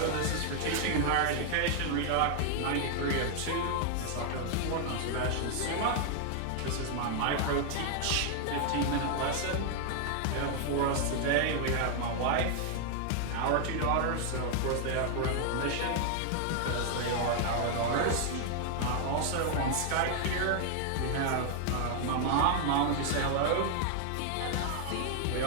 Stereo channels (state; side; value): different; both; correlation 0.00